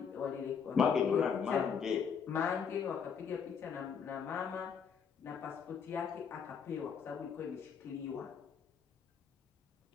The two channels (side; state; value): right; quieter; 6.7 dB